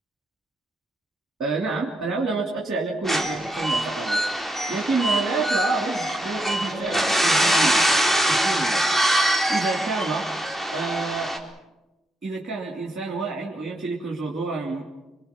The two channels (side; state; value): both; normal; correlation 0.80